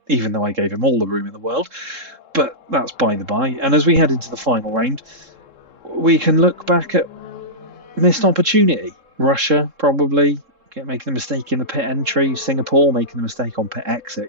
Even though I gave him all the room in the world. But that's by the by. And as we head into the final round, we can look back at missed opportunity. Russia, probably, making the mistake in the pit entry. Singapore, making the mistake on pit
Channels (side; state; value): left; late; 3.7 ms